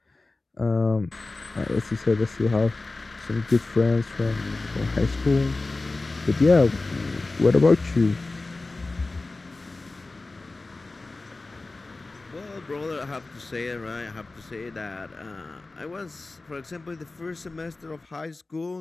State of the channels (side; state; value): right; quieter; 3.3 dB